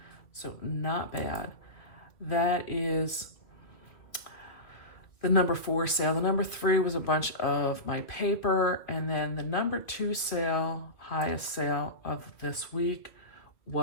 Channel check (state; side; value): late; right; 2.2 ms